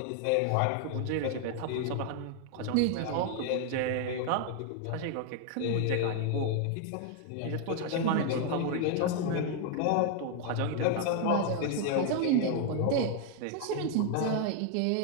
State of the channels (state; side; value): different; both; correlation 0.00